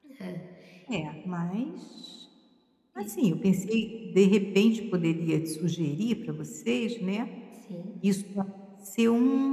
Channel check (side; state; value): both; identical; correlation 1.00